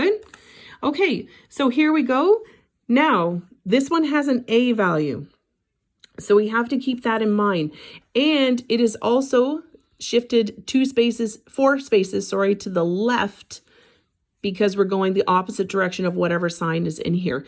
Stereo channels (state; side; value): identical; both; correlation 1.00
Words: Okay, so here we go. Now, this one has an a value. So we have to keep that in mind. And it is also shifted 4 spaces, to the left, because we're going the opposite direction of whatever sign is in here.